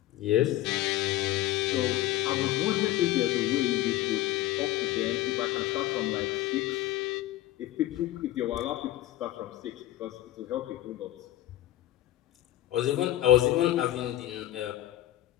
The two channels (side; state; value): right; quieter; 14.5 dB